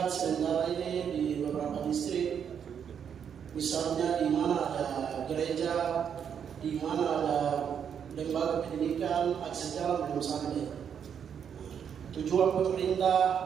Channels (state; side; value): quieter; left; 7.9 dB